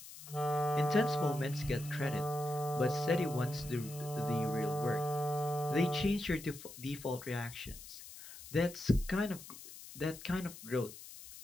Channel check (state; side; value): noise; left; hiss, 15 dB below the sound